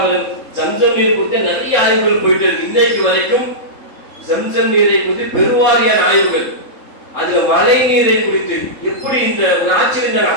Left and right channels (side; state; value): right; late; 3.7 ms